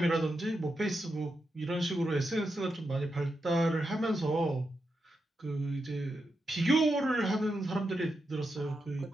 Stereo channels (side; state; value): both; normal; correlation 0.86